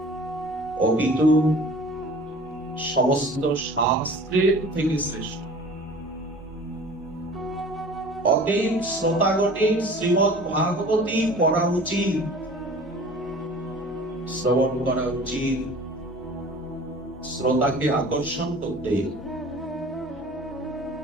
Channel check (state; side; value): normal; both; correlation 0.44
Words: অপিতু সমস্ত শাস্ত্রের থেকে শ্রেষ্ঠ। অতএব শ্রোতাগণের শ্রীমদ্ ভাগবতী পড়া উচিত, শ্রবণ করা উচিত, শ্রোতাকে আকর্ষণ করতে।